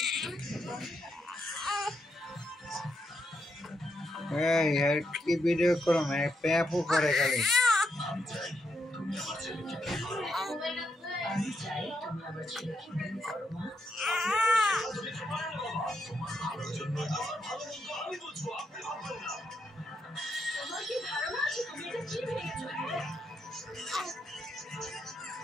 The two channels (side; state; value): both; normal; correlation 0.81